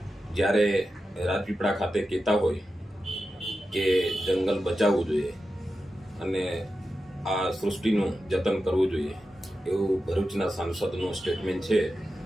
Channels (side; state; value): both; normal; correlation 0.91